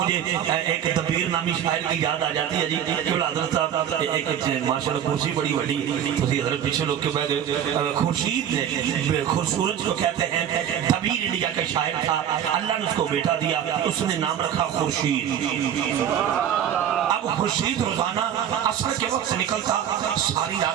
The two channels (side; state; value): left; quieter; 9.7 dB